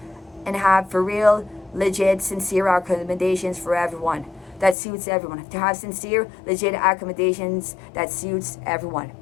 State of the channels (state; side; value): drops out; right; at 4.8 s